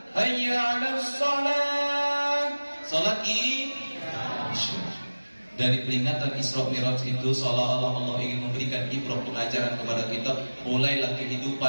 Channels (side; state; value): both; inverted; correlation -1.00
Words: Hayya 'alas shalah. Salat Isya. Dari peringatan Isra Mi'raj itu seolah-olah Allah ingin memberikan ibrah, pengajaran kepada kita. Mulailah